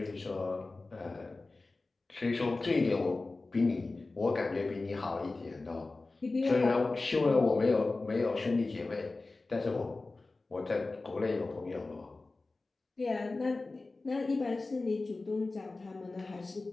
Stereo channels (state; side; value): quieter; right; 3.4 dB